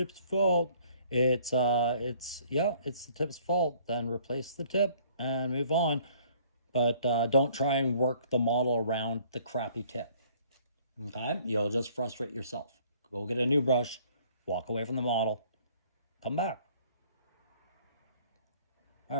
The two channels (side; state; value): both; inverted; correlation -0.58